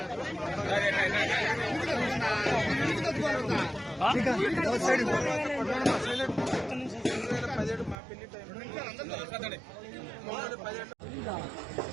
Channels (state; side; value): drops out; left; at 8.0 s